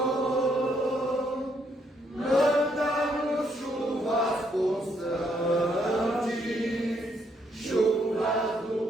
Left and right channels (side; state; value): both; normal; correlation 0.73